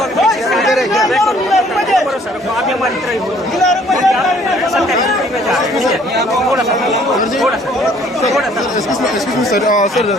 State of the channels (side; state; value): both; normal; correlation 0.59